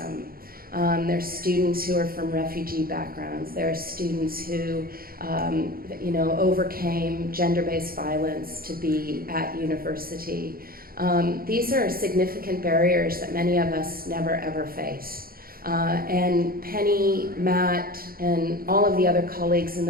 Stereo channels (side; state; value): left; late; 0.43 ms